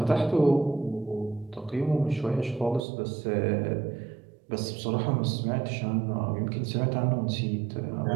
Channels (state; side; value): drops out; left; at 2.8 s